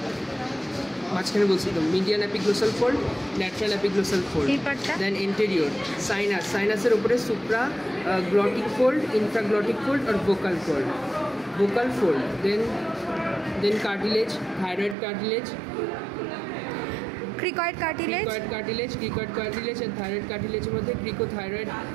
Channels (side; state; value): left; drops out; at 15.0 s